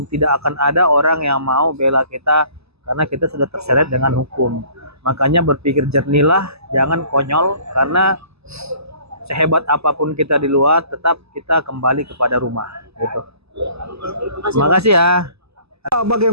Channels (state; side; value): late; left; 0.79 ms